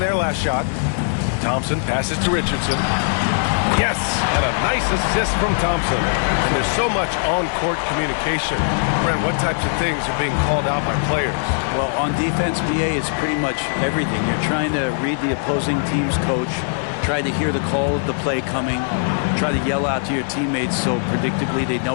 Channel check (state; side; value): silent; right; digital silence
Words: last shot. Thompson passes to Richardson. Yes, and a nice assist from Thompson. And there's so much on-court communication. Brent, what types of things are being called out by players? Well, on defense, BA, it's pretty much everything. You're trying to read the opposing team's coach, try to hear the call of the play coming, try to yell out to your teammates so predictably they know